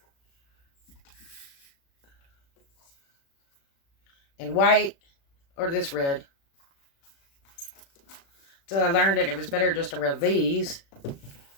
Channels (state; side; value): late; right; 36 ms